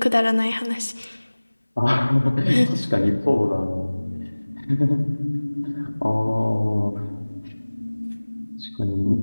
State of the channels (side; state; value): both; inverted; correlation -1.00